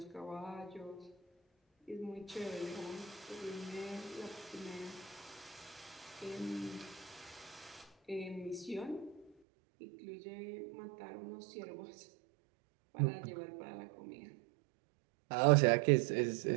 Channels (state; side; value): drops out; left; at 9.3 s